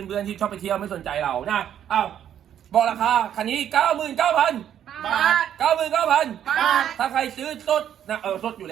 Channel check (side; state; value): left; quieter; 10.0 dB